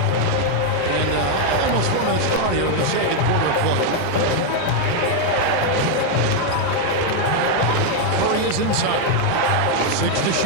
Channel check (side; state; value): both; different; correlation 0.01